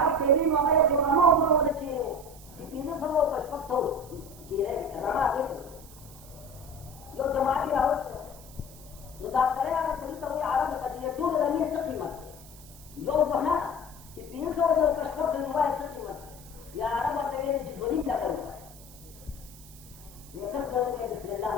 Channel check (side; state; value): right; noise; hiss, 20 dB below the sound